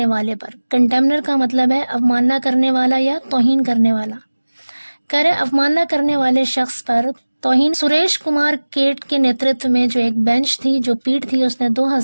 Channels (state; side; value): inverted; both; correlation -1.00